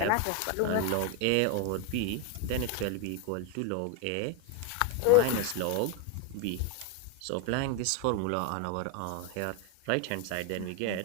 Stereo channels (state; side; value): different; both; correlation 0.01